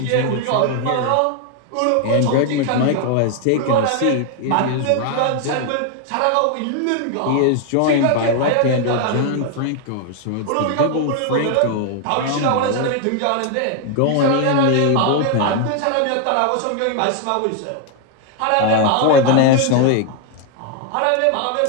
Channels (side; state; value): both; different; correlation 0.01